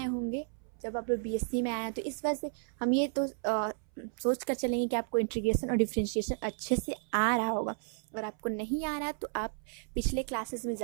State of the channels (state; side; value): silent; left; 56 dB below the other